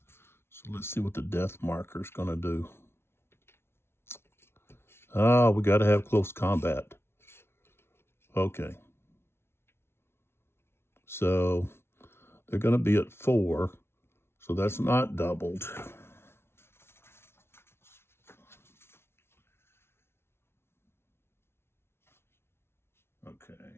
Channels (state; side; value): late; right; 0.12 ms